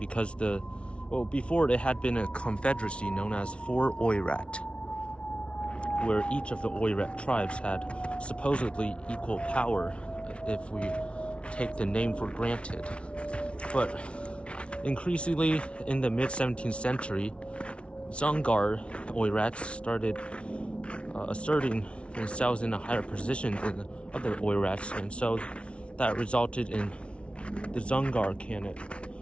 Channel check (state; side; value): late; right; 0.060 ms